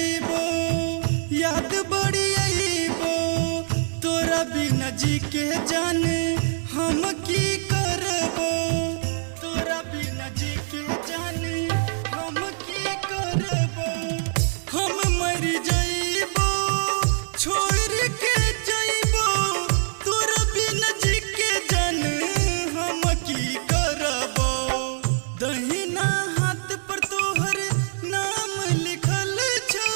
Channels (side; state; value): left; silent; digital silence